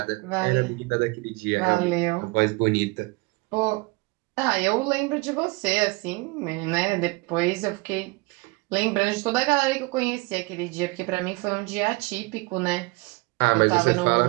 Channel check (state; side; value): quieter; left; 25.6 dB